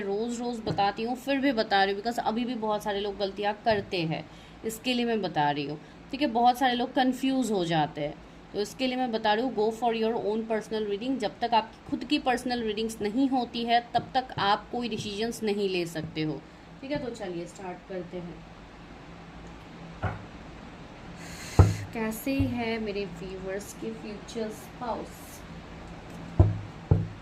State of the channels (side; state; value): both; identical; correlation 1.00